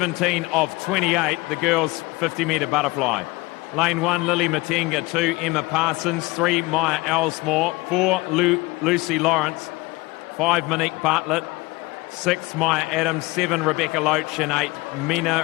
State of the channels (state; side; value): quieter; right; 22.5 dB